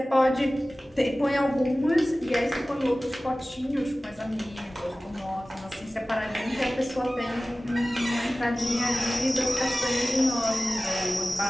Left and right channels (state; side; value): normal; both; correlation 0.97